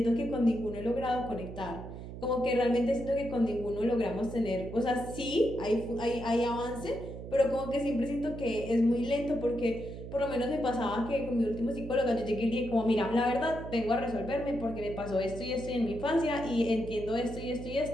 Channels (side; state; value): right; noise; hum, 11 dB below the sound